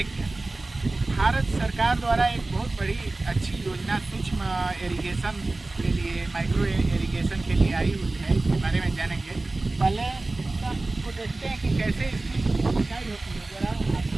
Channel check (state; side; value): quieter; left; 3.1 dB